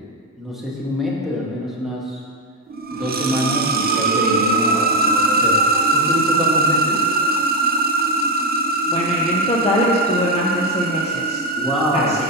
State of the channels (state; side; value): normal; both; correlation 0.08